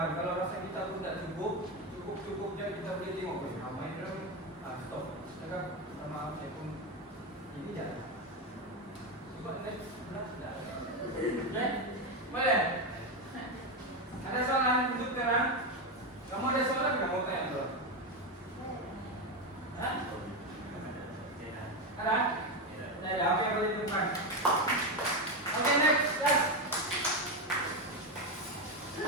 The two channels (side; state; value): both; normal; correlation 0.11